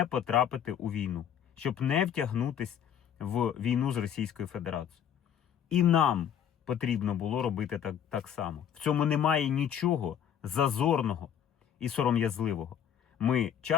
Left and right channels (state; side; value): quieter; right; 9.1 dB